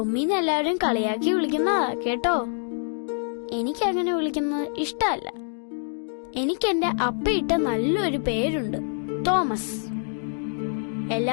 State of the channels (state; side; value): silent; right; digital silence